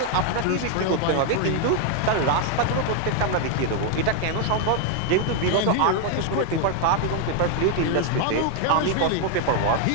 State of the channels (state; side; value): different; both; correlation 0.01